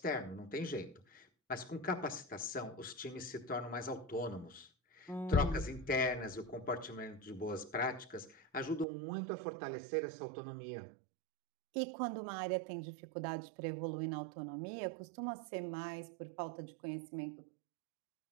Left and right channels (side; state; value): left; drops out; at 8.8 s